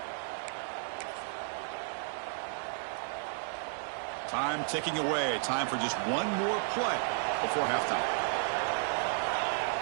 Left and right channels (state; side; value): silent; left; digital silence